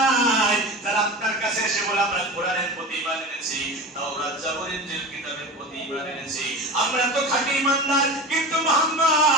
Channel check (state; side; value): normal; both; correlation 0.29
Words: যারা আপনার কাছে এসে বলে আমরা কোরআনের প্রতি ঈমান এনেছি, তাওরাত জাবর ইনজিল কিতাবের প্রতি ঈমান এনেছি, আমরা তো খাঁটি ঈমানদার, কিন্তু